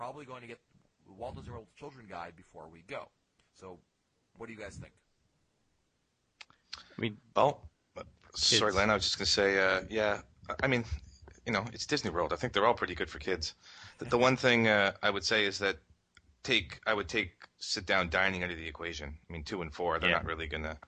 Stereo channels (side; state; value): both; identical; correlation 1.00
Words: going to get the Walt Disney World Children Guide before we go. So, what do you guys think? I mean, sorry, Len, I was just going to say, I mean, it's Disney World. I think they're all pretty good for kids. The one thing I would say is that I would take sit-down dining out of the equation. I mean, 2 and 4, they're not really gonna